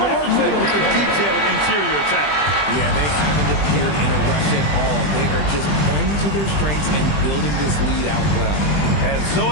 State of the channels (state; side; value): late; right; 20 ms